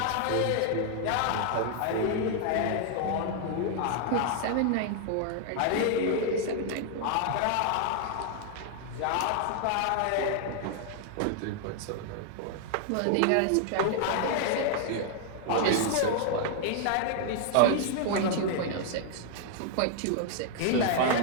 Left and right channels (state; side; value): different; both; correlation 0.00